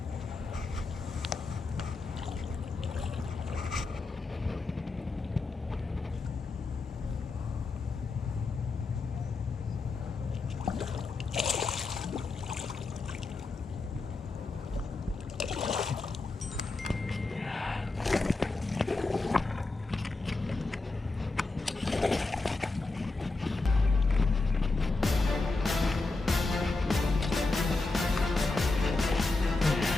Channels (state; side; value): quieter; right; 3.5 dB